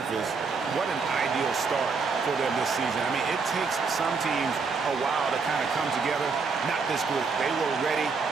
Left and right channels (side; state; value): left; quieter; 4.8 dB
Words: what an ideal start for them this season. I mean, it takes some teams a while to kind of come together. Not this group. They were ready